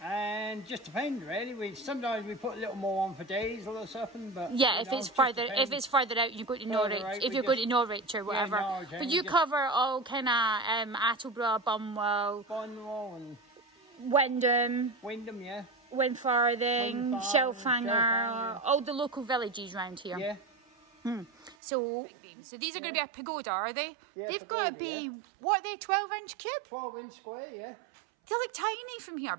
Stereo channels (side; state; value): left; drops out; at 21.6 s